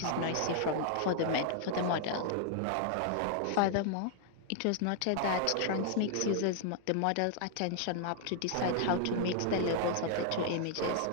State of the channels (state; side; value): different; both; correlation 0.00